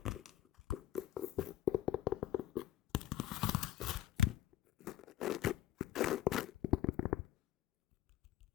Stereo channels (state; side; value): quieter; right; 13.2 dB